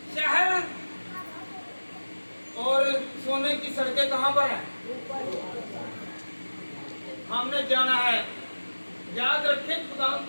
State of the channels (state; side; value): inverted; both; correlation -1.00